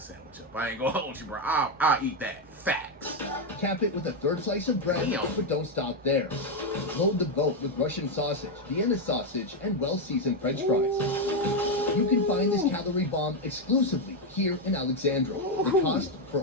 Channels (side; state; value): both; normal; correlation 0.05